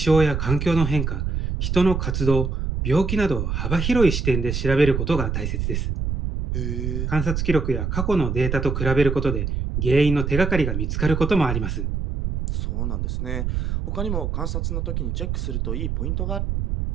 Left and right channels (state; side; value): noise; right; rumble, 1 dB below the sound